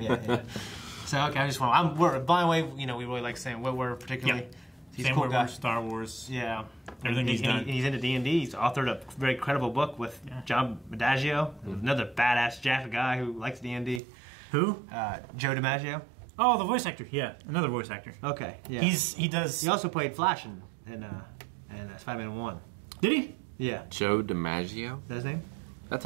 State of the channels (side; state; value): left; drops out; at 14.0 s